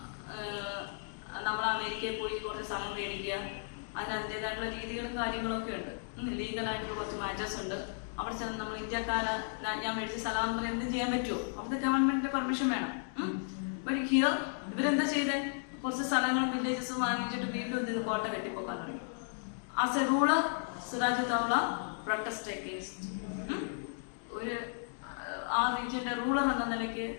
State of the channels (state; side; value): silent; right; digital silence